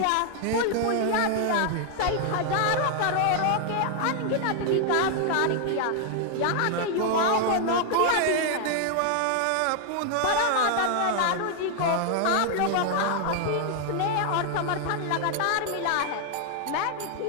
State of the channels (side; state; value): both; different; correlation 0.00